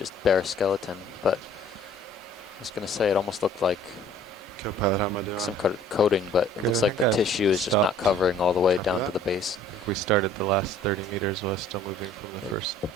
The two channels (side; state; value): both; normal; correlation 0.53